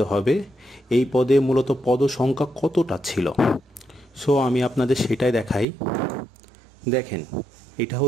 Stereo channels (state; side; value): drops out; left; at 5.7 s